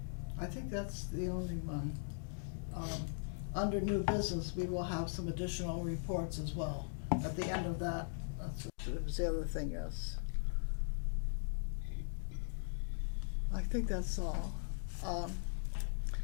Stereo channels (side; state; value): right; silent; digital silence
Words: I think that's the only one. Under new business, we will have some additional reports as well. At the end of that, that was the other thing, yes. I think that's all.